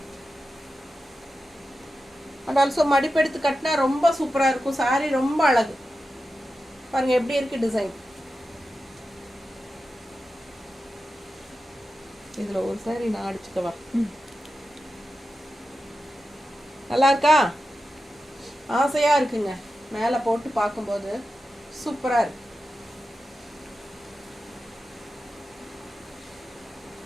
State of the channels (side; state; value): both; normal; correlation 0.91